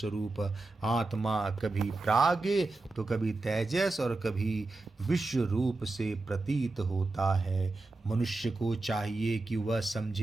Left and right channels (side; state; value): left; quieter; 3.2 dB